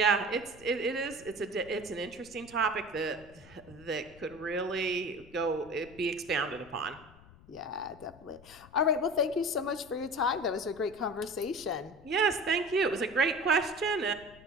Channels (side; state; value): left; noise; rumble, 22 dB below the sound